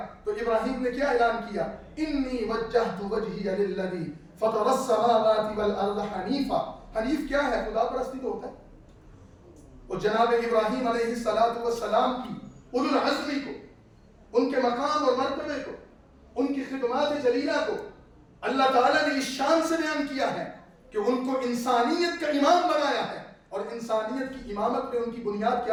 تو ابراہیم نے کیا اعلان کیا؟ انی وجہت وجہی للذی فطر السماوات والارض حنیفا. حنیف کیا ہے؟ خدا پرستی تو ہوتا ہے. اور جناب ابراہیم علیہ السلام کی اولو العزمی کو، ان کے مقام اور مرتبے کو، ان کی خدمات جلیلہ کو اللہ تعالیٰ نے اس شان سے بیان کیا ہے کہ ان کو انسانیت کا امام بنایا ہے. اور انسانیت کی امامت میں ان کی بنیاد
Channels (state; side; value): identical; both; correlation 1.00